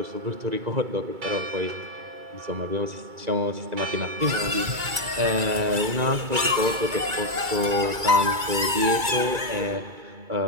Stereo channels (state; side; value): late; left; 2.3 ms